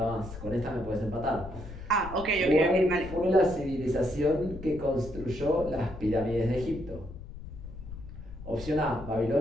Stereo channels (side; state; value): left; noise; rumble, 12 dB below the sound